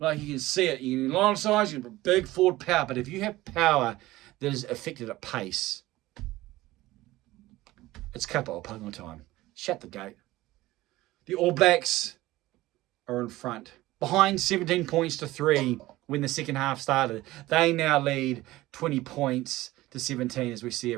you can see it, a lot of sides, you have big forward power, but if you have power that is affected at pace, it's capital punting time. Shut the gate. The All Blacks are in front. Behind 17 points to 3 when the second half started. They now lead 20 points to 17 as we see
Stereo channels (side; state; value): left; quieter; 17.6 dB